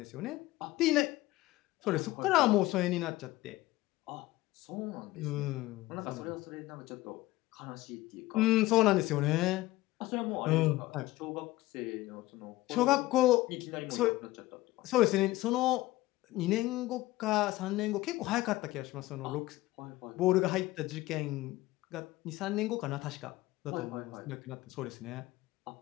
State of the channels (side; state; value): right; quieter; 18.0 dB